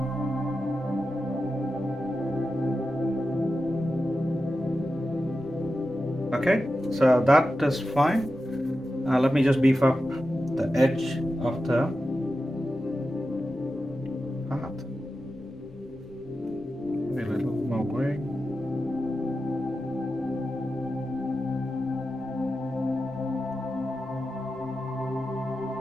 Okay, so that is fine. Let me just beef up the edge of the path. Maybe a little more gray.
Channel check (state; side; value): noise; right; rumble, 25 dB below the sound